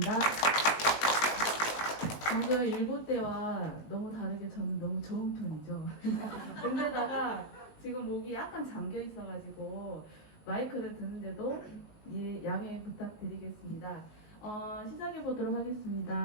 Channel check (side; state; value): right; late; 19 ms